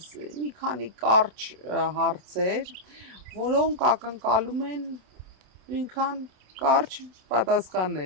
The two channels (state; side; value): late; left; 27 ms